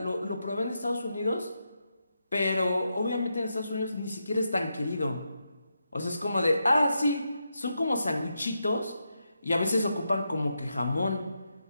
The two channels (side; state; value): both; inverted; correlation -0.85